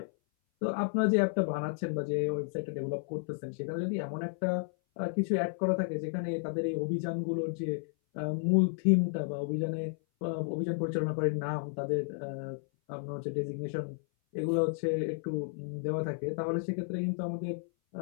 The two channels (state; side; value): silent; right; 56 dB below the other